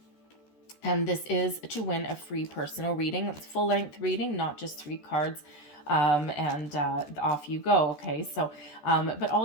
And this is to win a free personal reading. It's full-length reading, not just 3 cards. And off you go. Okay, so but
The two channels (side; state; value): right; late; 14 ms